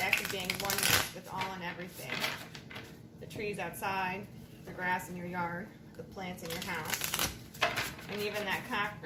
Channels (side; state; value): both; identical; correlation 1.00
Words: act of being oneness with all and everything. The trees outside, the grass in your yard, the plants in your house, and even that